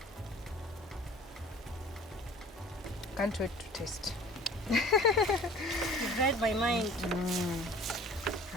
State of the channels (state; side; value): normal; both; correlation 0.45